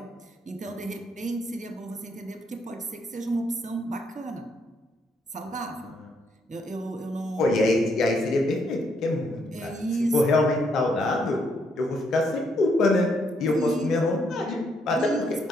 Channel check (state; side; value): normal; both; correlation 0.74